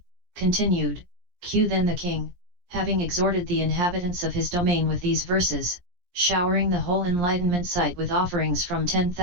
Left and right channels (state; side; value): late; left; 17 ms